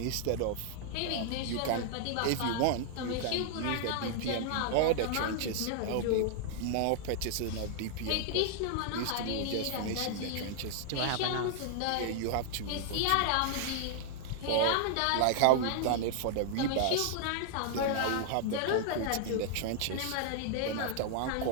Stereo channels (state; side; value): different; both; correlation -0.01